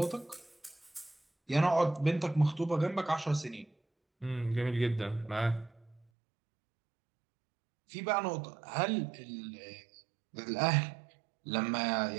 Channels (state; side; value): drops out; left; at 6.1 s